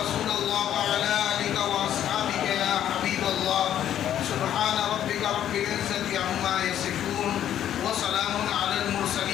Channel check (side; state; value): right; quieter; 10.8 dB